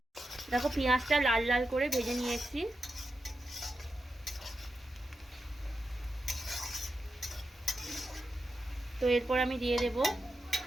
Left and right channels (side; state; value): both; normal; correlation 0.89